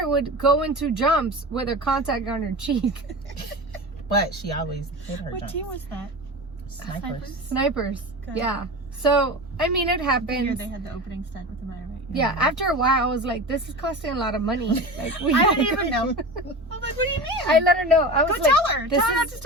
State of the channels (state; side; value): normal; both; correlation 0.29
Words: would go into jumps with her contact on her cheek. But she always hit her What jumps. team was that? Snipers. Snipers. Good. Yeah. So, I mean, it The year happens. they had the opening stunt with the Maya, right? Yeah, after a while, I was like, this is costing a lot of money. Like, we I didn't even know. I was like, what do you mean? I let her know. I was Go like, tell her. this Tell her not is- to